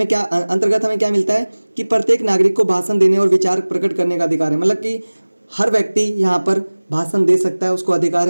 हमें क्या मिलता है कि प्रत्येक नागरिक को भाषण देने और विचार प्रकट करने का अधिकार है। मतलब कि हर व्यक्ति यहाँ पर भाषण दे सकता है, उसको अधिकार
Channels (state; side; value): inverted; both; correlation -1.00